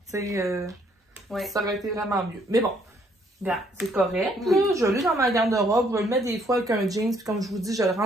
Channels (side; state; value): both; normal; correlation 0.67